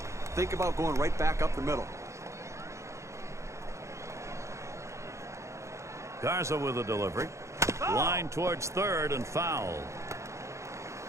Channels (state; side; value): late; left; 0.14 ms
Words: Think about going right back up the middle. Garza with a delivery. Line towards third and foul.